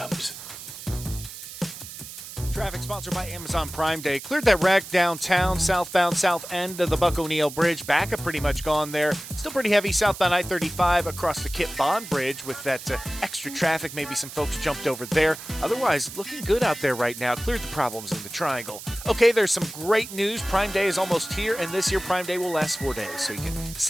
Traffic sponsored by Amazon Prime Day. Cleared that wreck downtown, southbound south end of the Buck O'Neill Bridge. Backup pretty much gone there. Still pretty heavy southbound I-35 across the Kit Bond Bridge with that extra traffic. Maybe some folks jumped over there. Otherwise, looking good out there right now. Cleared the problems in the triangle. Okay, there's some great news. Prime Day is almost here, and this year Prime Day will last 4 days. So you can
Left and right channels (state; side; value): noise; right; hiss, 12 dB below the sound